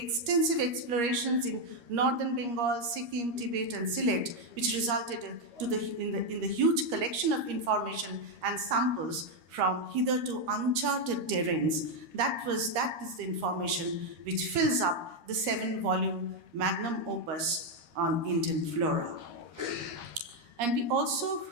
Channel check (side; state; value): left; late; 13 ms